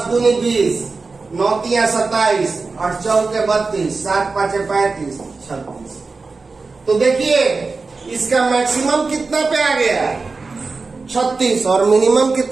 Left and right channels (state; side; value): quieter; left; 4.1 dB